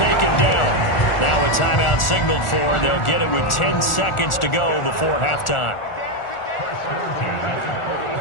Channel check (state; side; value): late; right; 1.4 ms